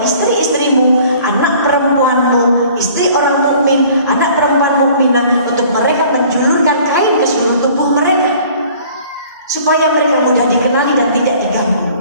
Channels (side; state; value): both; inverted; correlation -0.52